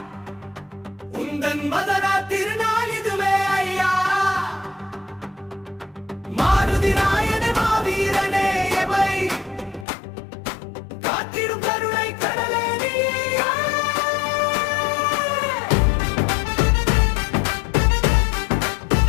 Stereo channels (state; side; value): drops out; right; at 9.9 s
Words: உந்தன் மதரா திருநாள் இதுவே ஐயா. மாருதி நாயனே மாவீரனே எவை காத்திடும் கருணை கடலே நீயே.